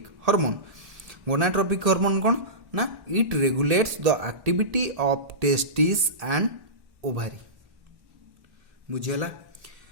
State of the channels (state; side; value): late; left; 1.8 ms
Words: hormone. Gonadotropic hormone कौन ना, it regulates the activity of testis and ovary. बुझेला,